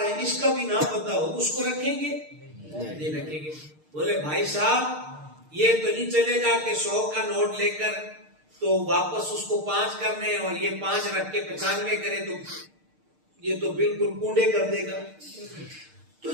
ہے اس کا بھی نام پتا ہو اس کو رکھیں گے نہیں رکھیں گے. بولے بھائی صاحب یہ تو نہیں چلے گا کہ 100 کا نوٹ لے کر تو واپس اس کو 5 کرنے اور یہ 5 رکھ کے 95 کرے تو یہ تو بالکل پونڈے کر دے گا. تو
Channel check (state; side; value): late; left; 6.6 ms